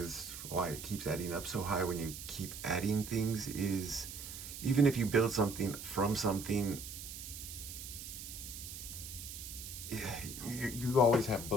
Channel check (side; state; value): right; noise; hiss, 10 dB below the sound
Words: why it keeps adding up so high when you keep adding things is even if you build something from something, you always have